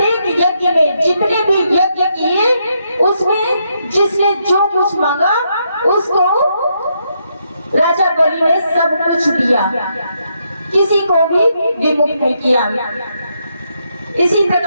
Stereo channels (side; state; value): both; inverted; correlation -0.78